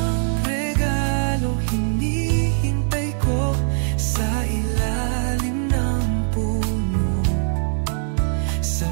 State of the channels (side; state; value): left; silent; digital silence